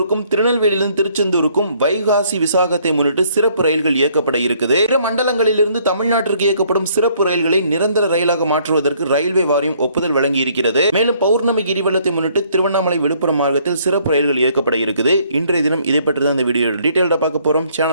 திருநெல்வேலியிலிருந்து திருச்செந்தூருக்கும் வைகாசி விசாகத்தை முன்னிட்டு சிறப்பு ரயில்கள் இயக்கப்பட இருக்குது. பிற மண்டலங்களிலிருந்து தமிழ்நாட்டிற்கு இயக்கப்படும் சிறப்பு ரயில்களை நிரந்தர ரயிலாக மாற்றுவதற்கு ரயில்வே வாரியம் ஒப்புதல் வழங்கி இருக்கிறது. மேலும் பௌர்ணமி கிரிவலத்தை முன்னிட்டு திருவண்ணாமலை விழுப்புரம் மார்க்கத்தில் சிறப்பு ரயில்கள் இயக்கப்பட இருக்குது. இன்றைய தினம் இதை பற்றி தான் இந்த வீடியோ டீடைல்டா பார்க்க போறோம்.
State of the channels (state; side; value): inverted; both; correlation -0.64